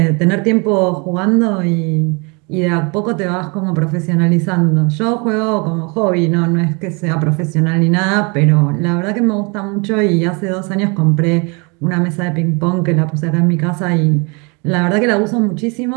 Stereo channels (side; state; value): left; quieter; 31.3 dB